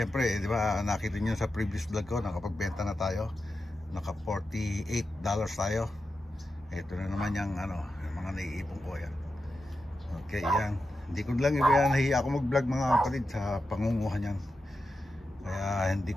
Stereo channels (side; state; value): both; normal; correlation 0.90